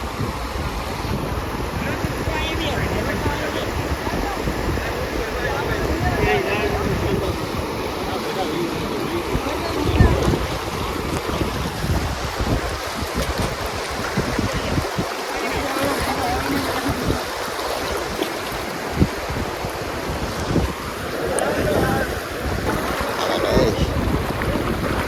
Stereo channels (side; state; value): both; identical; correlation 1.00